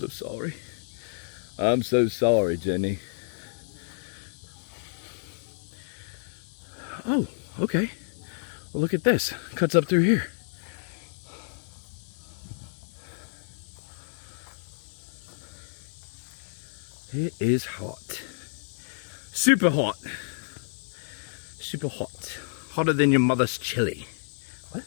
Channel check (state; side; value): silent; right; digital silence